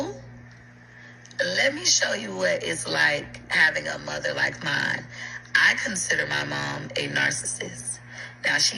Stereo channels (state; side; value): identical; both; correlation 1.00